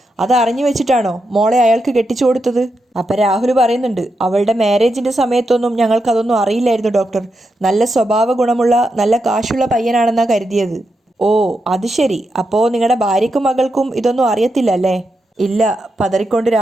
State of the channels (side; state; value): both; normal; correlation 0.85